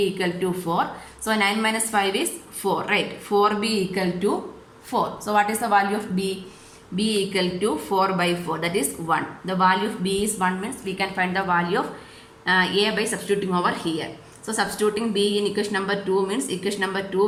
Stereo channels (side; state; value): both; identical; correlation 1.00